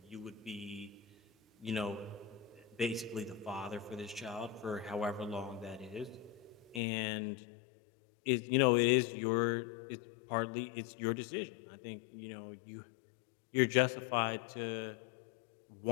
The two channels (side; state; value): right; drops out; at 6.8 s